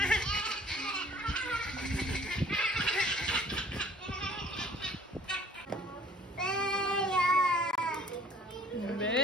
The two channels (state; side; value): normal; both; correlation 0.54